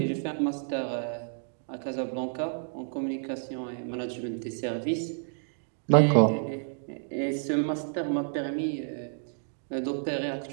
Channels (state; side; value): silent; left; digital silence